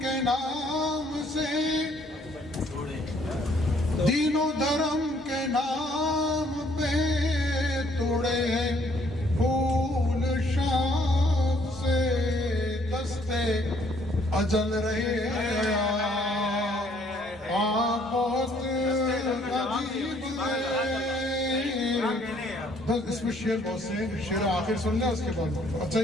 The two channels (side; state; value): both; normal; correlation 0.64